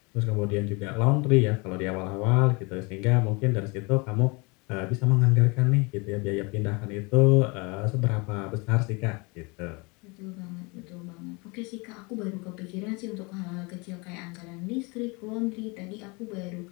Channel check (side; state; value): right; quieter; 28.6 dB